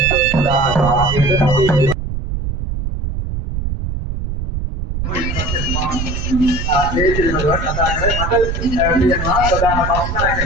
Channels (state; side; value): noise; right; rumble, 4 dB below the sound